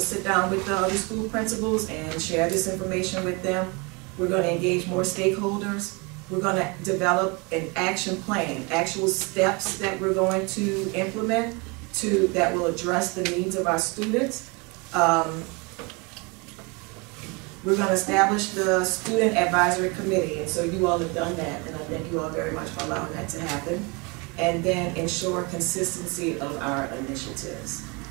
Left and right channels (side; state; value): left; quieter; 29.4 dB